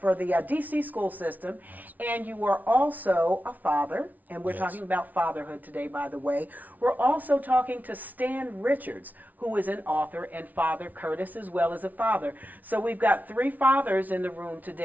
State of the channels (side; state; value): left; late; 0.077 ms